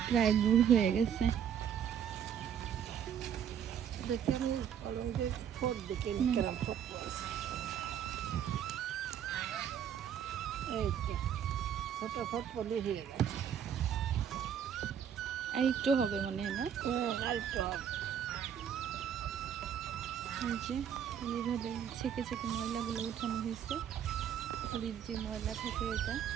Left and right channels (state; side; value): quieter; left; 8.8 dB